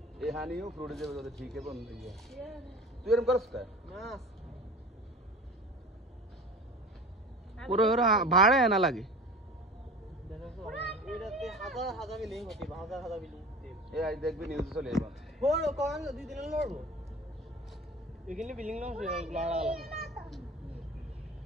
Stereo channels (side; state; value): both; normal; correlation 0.37